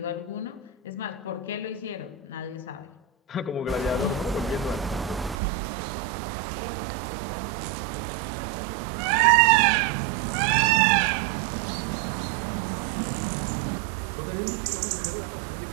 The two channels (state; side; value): drops out; left; at 5.4 s